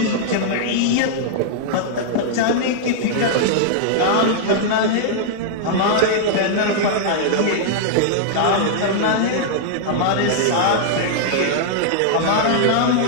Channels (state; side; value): different; both; correlation -0.01